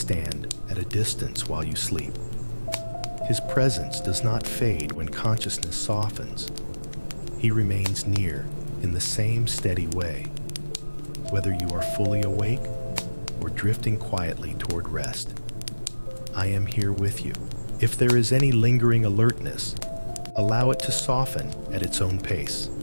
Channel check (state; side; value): inverted; both; correlation -1.00